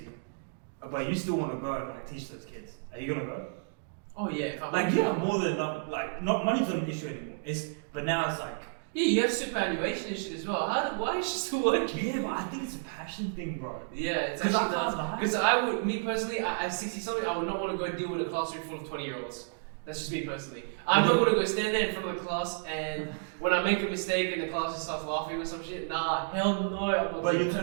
but you still want to go and like teach those kids. Are you gonna go? Oh yeah. If I Like you have more than enough. Like not money's not an issue anymore. But now it's like. Yeah, you have superannuation and shit as well. Why is she still working? Yeah, but I think it's a passion thing, bro. Yeah, it's 'Cause actually I does. can't lie. Because I would, me personally, at 60 something, I would not want to go deal with a classroom full of 20-year-olds. That's just me personally. I'm not going to go stand there in front of the class and when I make a mistake and the class just starts laughing or some shit, nah, hell no. I'm not But doing you're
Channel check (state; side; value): silent; left; digital silence